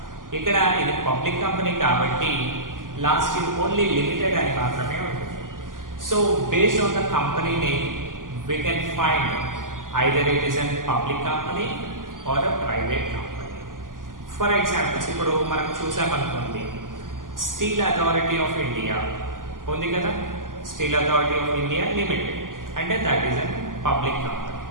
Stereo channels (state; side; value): late; left; 0.89 ms